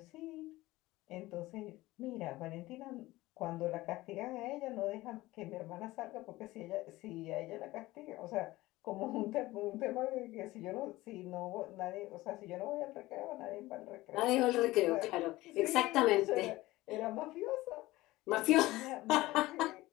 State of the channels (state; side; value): quieter; right; 18.4 dB